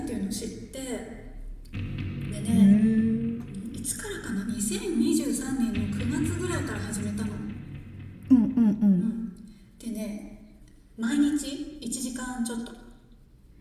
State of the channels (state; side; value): identical; both; correlation 1.00